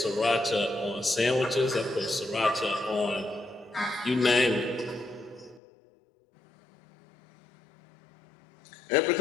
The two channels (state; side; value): drops out; right; at 5.6 s